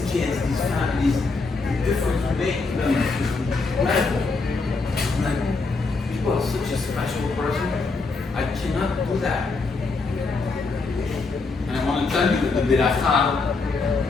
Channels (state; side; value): quieter; right; 4.0 dB